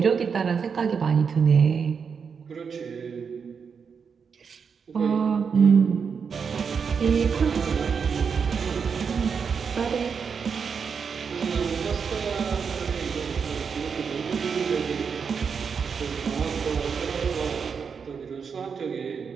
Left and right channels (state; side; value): quieter; left; 6.1 dB